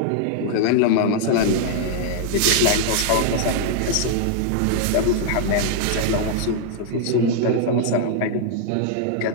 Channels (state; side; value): different; both; correlation 0.00